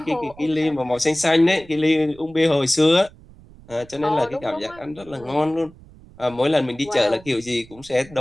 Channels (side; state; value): right; noise; rumble, 23 dB below the sound